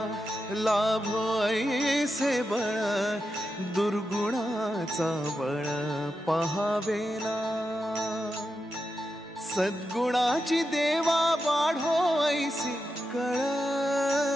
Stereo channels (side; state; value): both; normal; correlation 0.88